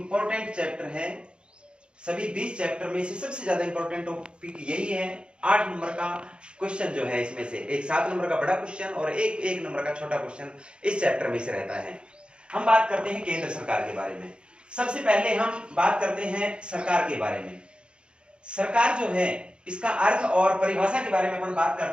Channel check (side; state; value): left; late; 0.054 ms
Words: चैप्टर है। सभी 20 चैप्टर में से सबसे ज्यादा इंपॉर्टेंट टॉपिक यही है। 8 नंबर का क्वेश्चन जो है इसमें से एक 7 नंबर का बड़ा क्वेश्चन और एक 1 नंबर का छोटा क्वेश्चन इस चैप्टर में से रहता है। हम बात करते हैं केंद्र सरकार के बारे में। सबसे पहले हम बात करते हैं सरकार के बारे में। सरकार जो है इसका अर्थ और परिभाषा के बारे में अपन बात